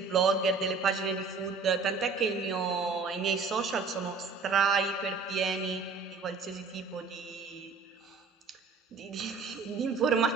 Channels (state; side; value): quieter; left; 4.6 dB